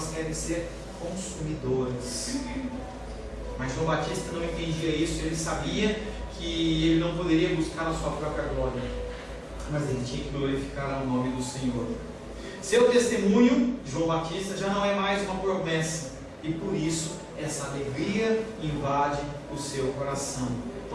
querem ser consumidoras. Mas João Batista não entendia isso. Ele sabia que ele não poderia buscar a sua própria glória, mas ele tinha que glorificar o nome do Senhor. Seu testemunho, João Batista, já não é mais uma promessa, e por isso essa alegria invade o seu coração.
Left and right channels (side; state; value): both; identical; correlation 1.00